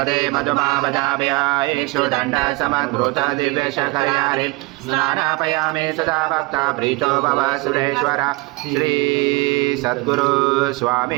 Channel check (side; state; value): left; quieter; 24.7 dB